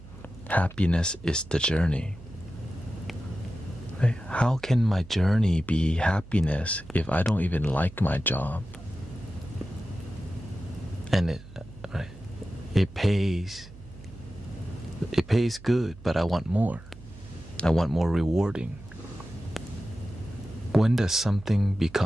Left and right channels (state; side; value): noise; right; hum, 18 dB below the sound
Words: happiness is the journey. Right? How can my journey be happiness if I don't even like my job? And it pays good, but I want more. I want more rewarding. When does something